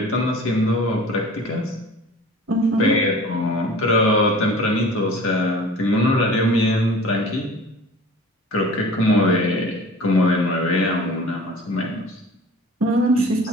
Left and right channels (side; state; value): both; normal; correlation 0.43